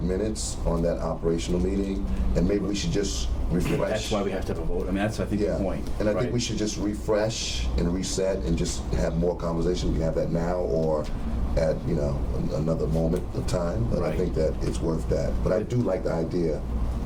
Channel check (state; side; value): identical; both; correlation 1.00